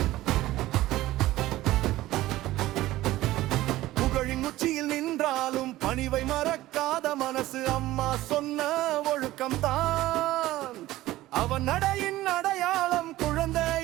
புகழின் உச்சியில் நின்றாலும் பணிவை மறக்காத மனசு அம்மா சொன்ன ஒழுக்கம்தான் அவன் நடையின் அடையாளம்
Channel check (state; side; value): quieter; left; 16.3 dB